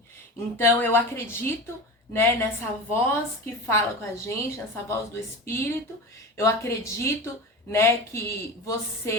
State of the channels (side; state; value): both; normal; correlation 0.29